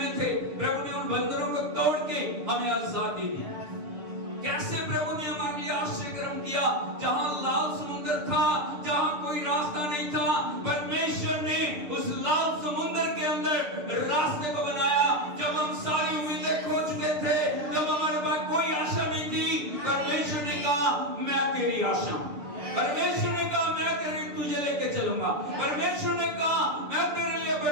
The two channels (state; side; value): late; left; 6.7 ms